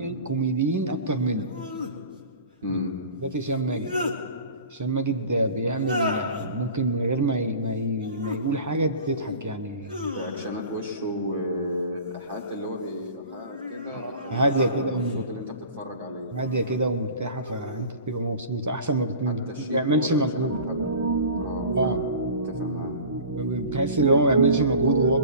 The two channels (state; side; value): inverted; both; correlation -0.39